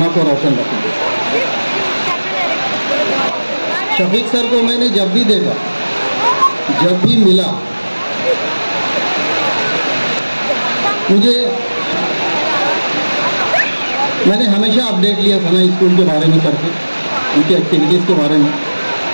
को रोशन रखें। शफीक सर को मैंने जब भी देखा, जब भी मिला, मैंने हमेशा अपडेट लिया सना स्कूल के बारे में सर से, उनकी एक्टिविटीज़ के बारे में।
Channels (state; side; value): inverted; both; correlation -1.00